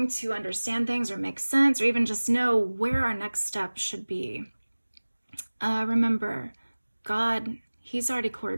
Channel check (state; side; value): inverted; both; correlation -1.00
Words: to understand things or make sense, or even just know where our next step should be, remember, God, He's already